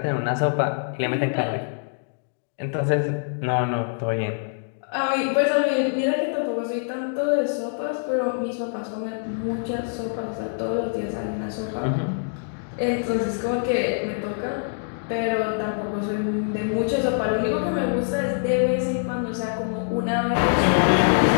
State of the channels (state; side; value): silent; right; digital silence